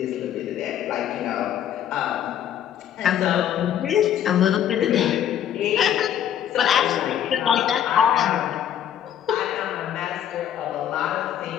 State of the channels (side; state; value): right; quieter; 10.1 dB